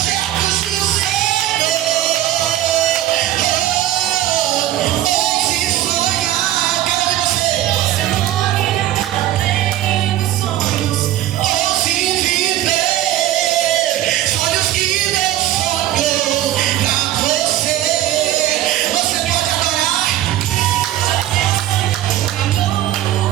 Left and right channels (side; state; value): left; quieter; 13.4 dB